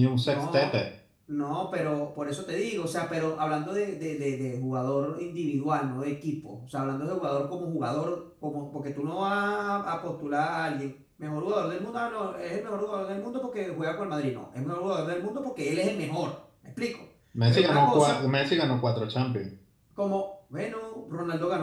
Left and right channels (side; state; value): both; identical; correlation 1.00